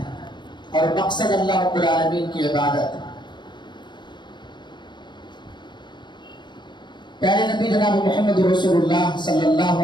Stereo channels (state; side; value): late; right; 0.22 ms